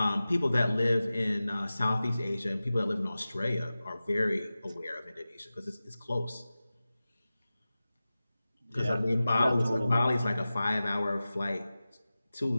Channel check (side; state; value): both; inverted; correlation -0.96